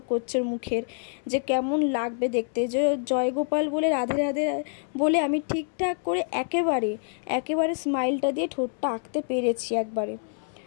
করছে মুখের, যে কেমন লাগবে দেখতে। যে জয়গোপাল বলে রাধে রাধে বলে আমি ঠিকঠাক করে একেবারে স্মাইলটা দিয়ে ঠোঁটটা আঁকতে পেরেছি একবারে।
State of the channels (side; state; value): right; silent; 60 dB below the other